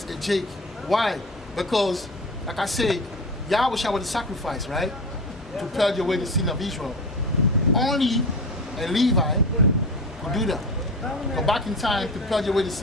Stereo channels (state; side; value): normal; both; correlation 0.29